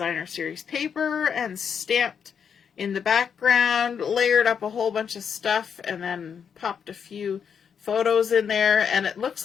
series paper and stamped in the background, layered up a whole bunch of stuff, and then popped a few photos in there. And it looks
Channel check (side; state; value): right; quieter; 7.2 dB